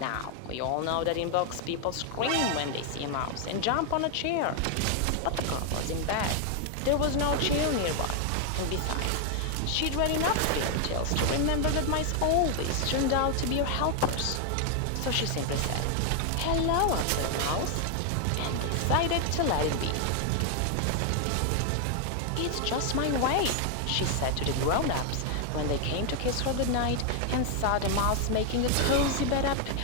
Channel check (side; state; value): both; different; correlation 0.00